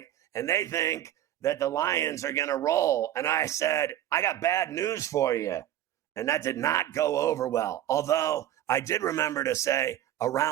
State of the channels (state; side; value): quieter; left; 12.2 dB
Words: and they think that the Lions are going to roll. And I said, I got bad news for you. And that did not go over well. Although I did remember to say